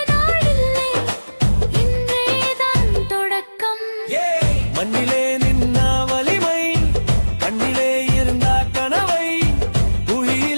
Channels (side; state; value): both; inverted; correlation -1.00